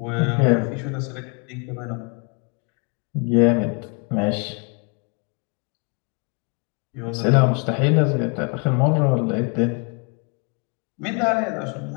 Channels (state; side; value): quieter; right; 35.2 dB